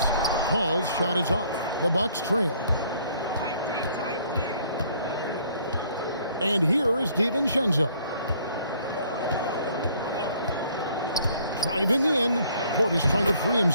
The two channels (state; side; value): inverted; both; correlation -0.61